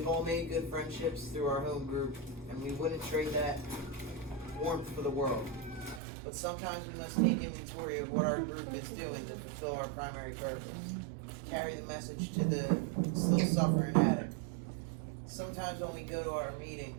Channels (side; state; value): left; drops out; at 6.0 s